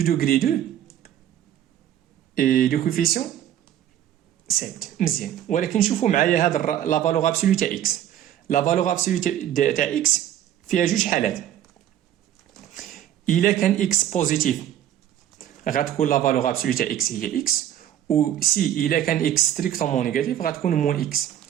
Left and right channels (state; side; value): quieter; left; 11.2 dB